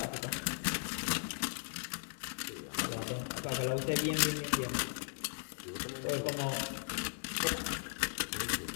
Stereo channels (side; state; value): right; silent; digital silence